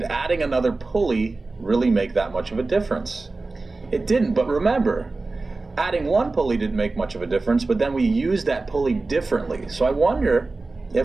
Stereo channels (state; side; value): quieter; left; 3.5 dB